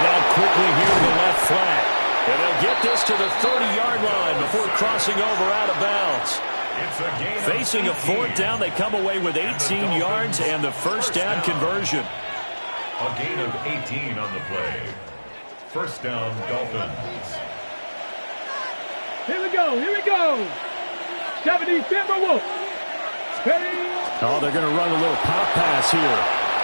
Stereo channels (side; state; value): both; inverted; correlation -1.00